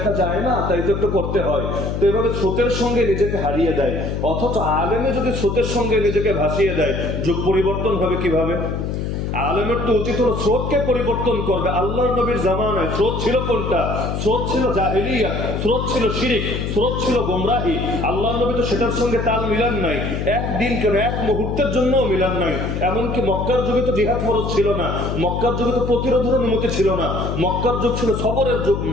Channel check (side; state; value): left; noise; hum, 3 dB below the sound